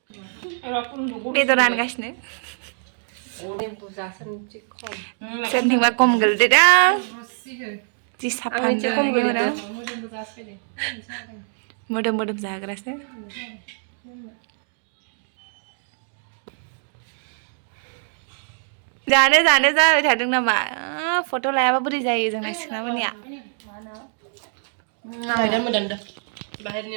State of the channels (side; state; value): left; silent; 59 dB below the other